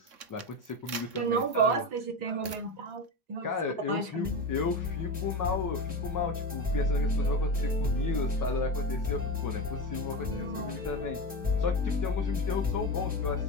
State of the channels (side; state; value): left; late; 3.6 ms